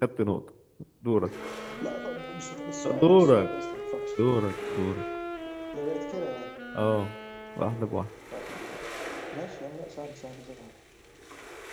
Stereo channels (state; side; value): identical; both; correlation 1.00